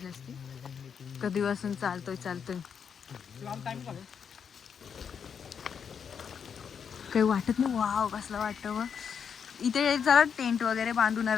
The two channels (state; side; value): quieter; right; 7.1 dB